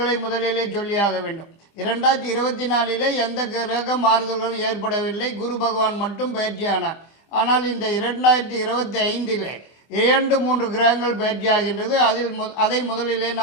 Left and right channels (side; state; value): right; late; 25 ms